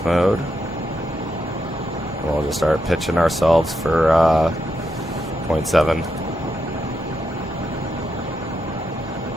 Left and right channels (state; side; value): normal; both; correlation 0.83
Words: mode, and we'll just start pitching ourselves for 0.7.